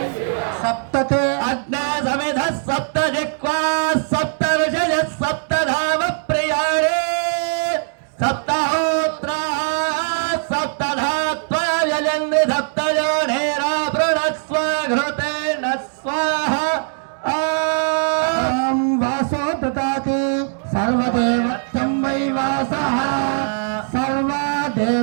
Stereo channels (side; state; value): left; silent; digital silence